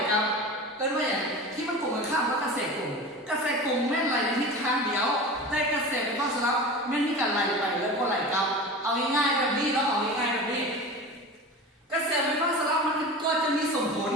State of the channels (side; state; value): both; normal; correlation 0.32